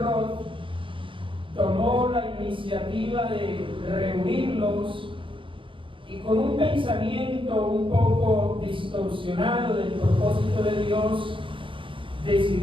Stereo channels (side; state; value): left; late; 0.25 ms